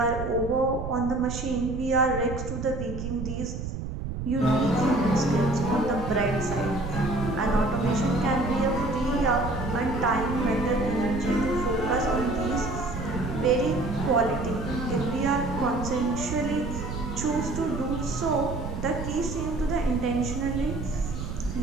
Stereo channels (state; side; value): noise; right; rumble, 6 dB below the sound